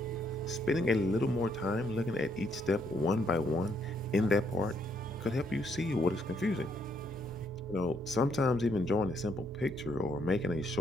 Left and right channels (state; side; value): normal; both; correlation 0.72